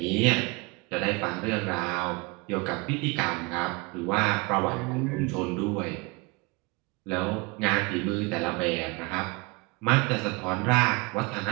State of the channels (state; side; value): quieter; left; 26.9 dB